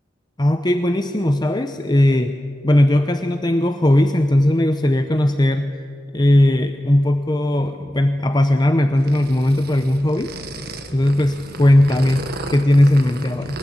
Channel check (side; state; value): both; normal; correlation 0.93